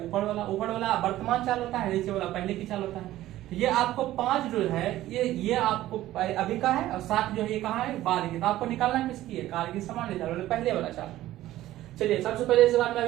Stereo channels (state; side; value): quieter; left; 14.8 dB